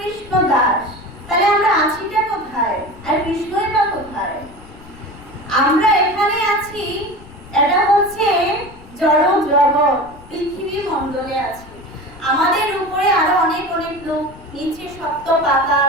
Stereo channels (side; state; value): left; noise; rumble, 20 dB below the sound